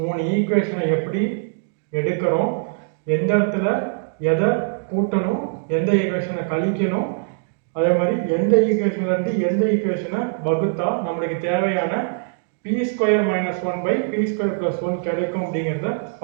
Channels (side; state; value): left; silent; digital silence